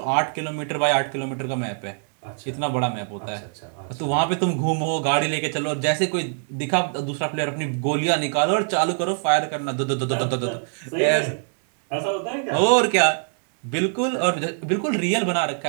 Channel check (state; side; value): silent; left; 63 dB below the other